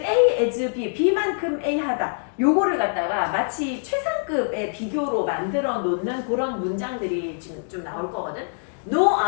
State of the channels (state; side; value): silent; right; digital silence